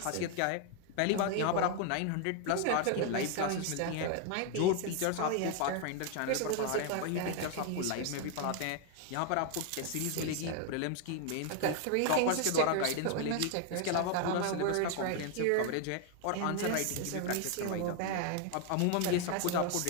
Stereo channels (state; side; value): different; both; correlation 0.00